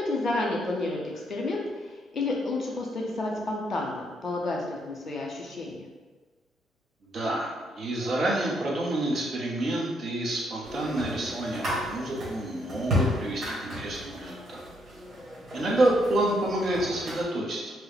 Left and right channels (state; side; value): normal; both; correlation 0.74